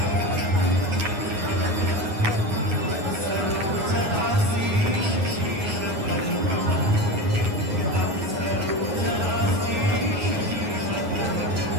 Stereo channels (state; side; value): late; left; 9.5 ms